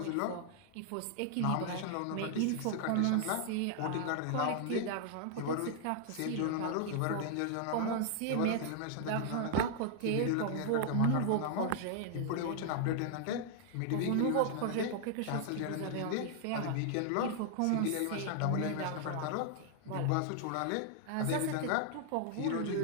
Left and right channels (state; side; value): different; both; correlation 0.00